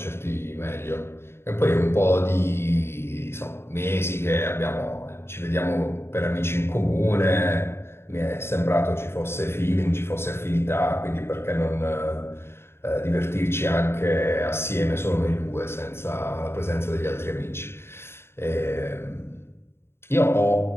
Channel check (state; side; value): late; right; 0.12 ms